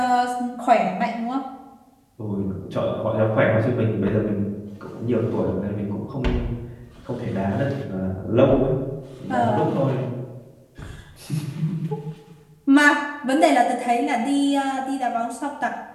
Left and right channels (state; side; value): identical; both; correlation 1.00